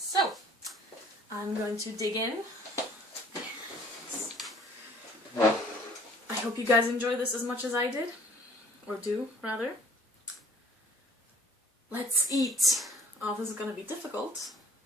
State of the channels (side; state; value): both; normal; correlation 0.56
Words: I'm going to dig in. I hope you guys enjoy this as much as I did. Or do, rather. Let's eat. Oh, this is gonna be difficult.